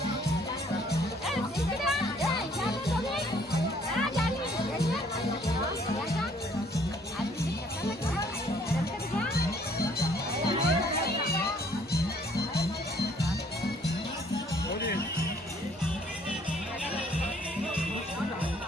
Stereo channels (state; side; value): normal; both; correlation 0.61